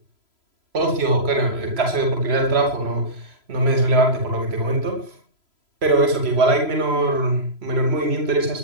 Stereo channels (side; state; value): left; late; 3.0 ms